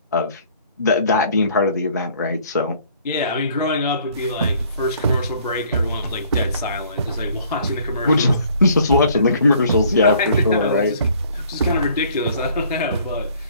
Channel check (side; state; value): both; inverted; correlation -0.58